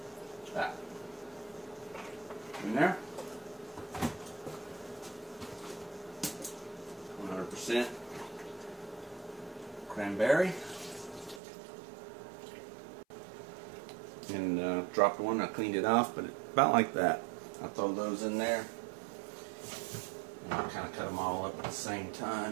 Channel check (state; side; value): drops out; left; at 11.4 s